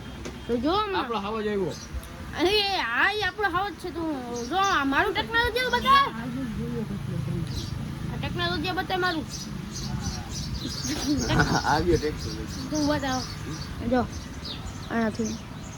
તો જો આપણો હવા જ આવ્યો. અરે હા એ આપણો હવા જ છે. તું જો મારું ટેકનોલોજી બતાવ. આ ટેકનોલોજી બતાય મારું આવ્યો ટેકનોલોજી તું બતાવ. જો અહીંયાથી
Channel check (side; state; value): both; identical; correlation 1.00